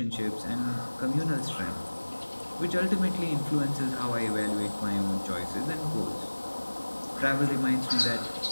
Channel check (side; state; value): both; inverted; correlation -1.00